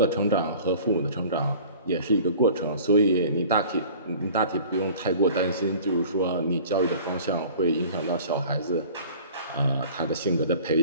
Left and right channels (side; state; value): both; inverted; correlation -0.46